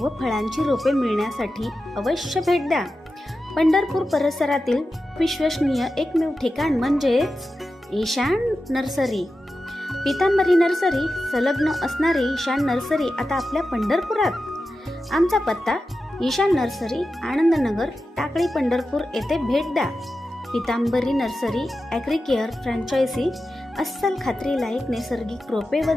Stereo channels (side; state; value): both; normal; correlation 0.92